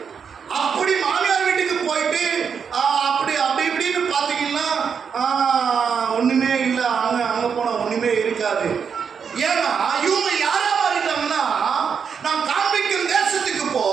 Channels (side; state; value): left; quieter; 6.6 dB